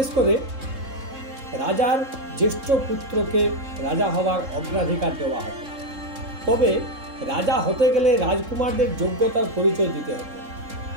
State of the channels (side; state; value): left; late; 3.7 ms